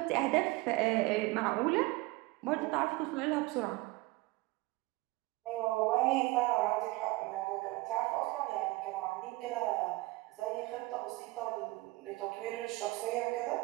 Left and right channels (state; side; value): quieter; left; 21.4 dB